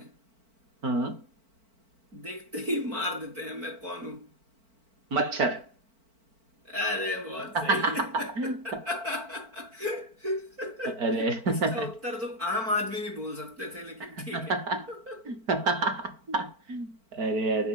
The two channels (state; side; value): late; left; 4.5 ms